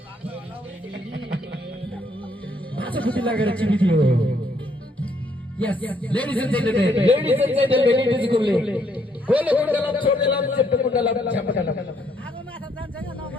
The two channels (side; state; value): both; normal; correlation 0.70